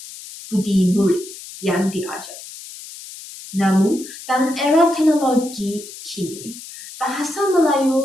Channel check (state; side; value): noise; left; hiss, 14 dB below the sound